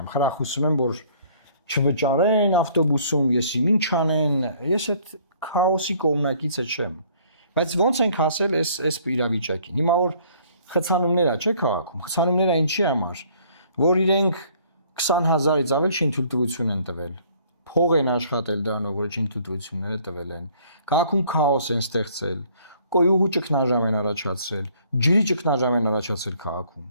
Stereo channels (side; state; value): both; inverted; correlation -0.59